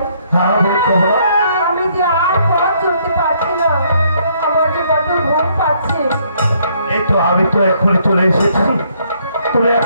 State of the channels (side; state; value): both; inverted; correlation -0.68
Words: হ্যাঁ বল কমলা। আমি যে আর পথ চলতে পারছি না, আমার যে কত ঘুম পাচ্ছে। এই তো আমি তো এখনই চলে এসেছি, তুমি